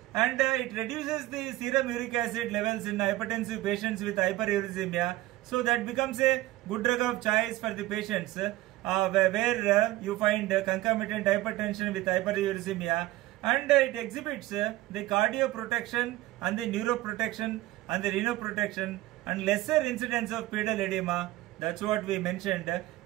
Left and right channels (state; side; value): quieter; left; 16.8 dB